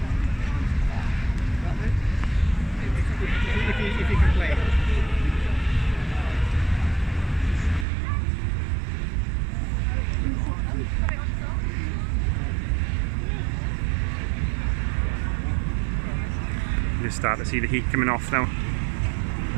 If you can play it. You start to see the heat coming off now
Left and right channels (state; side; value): drops out; left; at 7.9 s